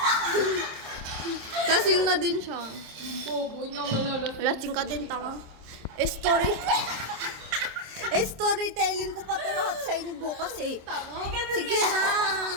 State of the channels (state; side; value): late; left; 26 ms